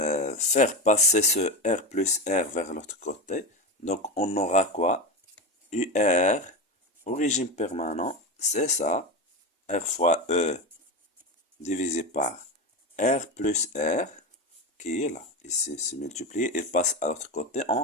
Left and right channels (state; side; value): normal; both; correlation 0.19